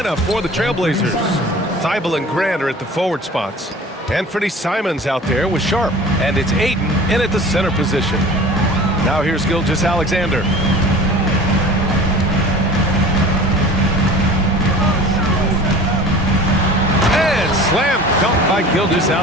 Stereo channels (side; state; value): both; normal; correlation 0.42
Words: for the Trailblazers. Thibault and Grant are at the forward spots. Anthony Simons out there with Sharp. And it's Aiden in at the center position. Now here's Gilgeous Alexander. And slam dunk by Gilgeous